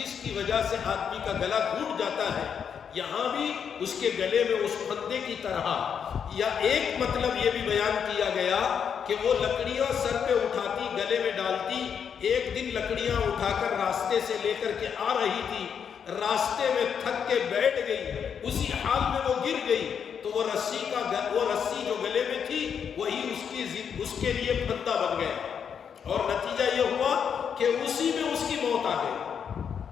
کی وجہ سے آدمی کا گلا گھوٹ جاتا ہے۔ یہاں بھی اس کے گلے میں اس پھندے کی طرح، یا ایک مطلب یہ بھی بیان کیا گیا کہ وہ لکڑیاں سر پہ اٹھاتی، گلے میں ڈالتی، ایک دن لکڑیاں اٹھا کر راستے سے لے کر کے آ رہی تھی، راستے میں تھک کے بیٹھ گئی، اسی حال میں وہ گر گئی، تو وہ رسی جو گلے میں تھی وہی اس کے لیے پھندا بن گیا، اور نتیجہ یہ ہوا کہ اسی میں اس کی موت آ گئی۔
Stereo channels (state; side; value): quieter; right; 7.4 dB